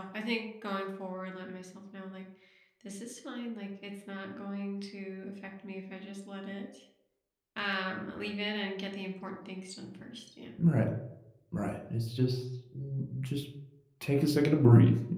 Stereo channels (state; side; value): identical; both; correlation 1.00